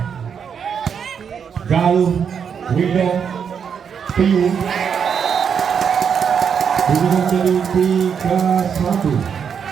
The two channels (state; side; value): quieter; left; 7.1 dB